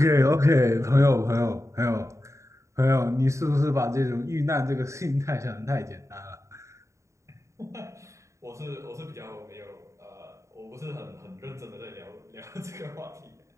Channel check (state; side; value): late; left; 0.14 ms